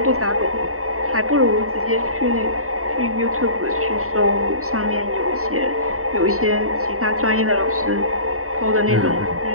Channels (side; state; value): left; late; 0.64 ms